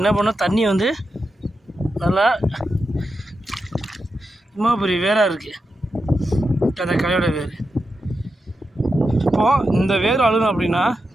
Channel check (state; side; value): normal; both; correlation 0.88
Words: என்ன பண்ணால் தண்ணி வந்து நல்லா இம்மா பெரிய வேராக இருக்குது அந்த கலையோட வேர். இப்போது இந்த வேர் அழுகணும் அப்படின்னா